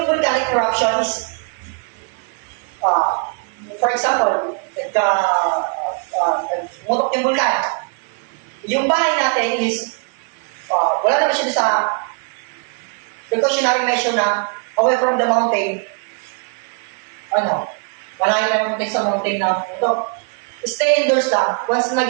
volcanic eruption is, for example, nagmutok yung vulkan. Yung bahay natin is, wala naman siya sa precautionary measure na away from the mountain. Malayo tayo mountain sa mountain na ito. Stay indoors lang once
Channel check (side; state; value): left; quieter; 38.7 dB